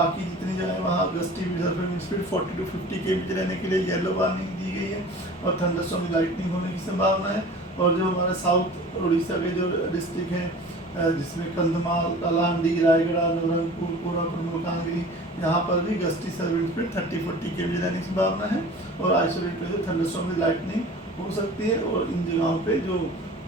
जितनी जगह वहाँ gusty wind speed 40 to 50 km रहने के लिए येलो वार्निंग दी गई है और थंडरस्टॉर्म में लाइटनिंग होने की संभावना है। और जो हमारे साउथ उड़ीसा के जो डिस्ट्रिक्ट हैं जिसमें कंधमाल, कलांडी, रायगढ़, नवरंगपुर, कोरापुट, मलकानगिरी, यहाँ पर भी गस्टी विंड स्पीड 30-40 km रहने की संभावना है और आइसोलेटेड जो थंडरस्टॉर्म में लाइटनिंग हो सकती है। और इन जगहों पे जो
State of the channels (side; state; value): both; normal; correlation 0.41